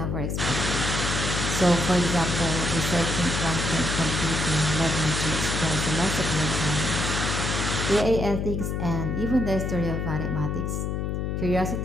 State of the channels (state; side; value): noise; left; hum, 1 dB below the sound